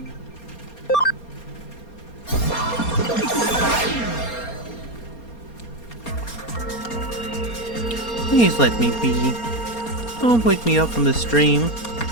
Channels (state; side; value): late; right; 4.3 ms